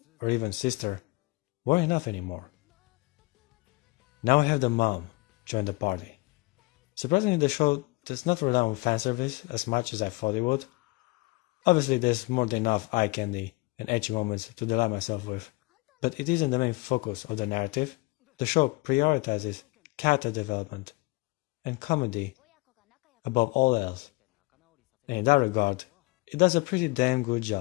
or even sister weren't enough anymore. Now I have the mom join the party. Surprisingly, the show does not rely on fanservice as much as I thought it would. Obviously, there's more than enough eye candy and ecchi moments to delight myself with, but it isn't the main focus of the narrative. The show prioritizes character development and comedy above all else, and in that regard, it does a pretty damn good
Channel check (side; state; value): right; quieter; 25.0 dB